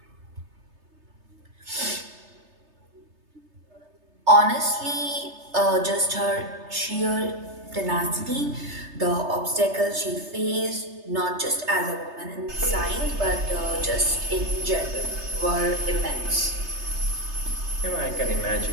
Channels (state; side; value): late; left; 3.3 ms